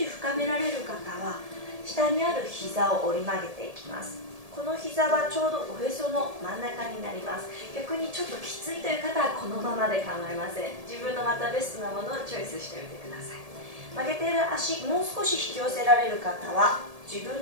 深められる方は下にある膝を折り曲げていきます。この膝はちょうどおへその真ん中になります。逆にちょっときついという方はこのままで構いません。自分のまたベストなものをチョイスしてみてください。曲げている足もう少し引き寄せられる方は自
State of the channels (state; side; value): late; left; 1.7 ms